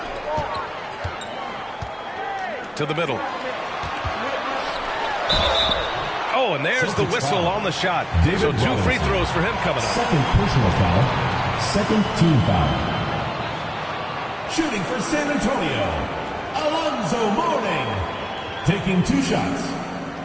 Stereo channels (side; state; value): both; identical; correlation 1.00